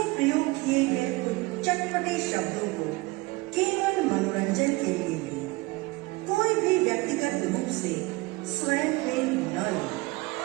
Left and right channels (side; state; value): left; quieter; 23.1 dB